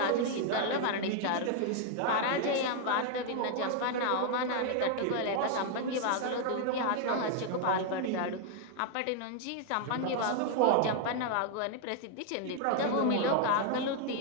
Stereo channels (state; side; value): different; both; correlation 0.00